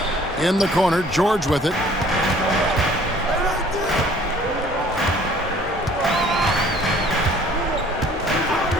In the corner, George with it.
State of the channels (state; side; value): normal; both; correlation 0.54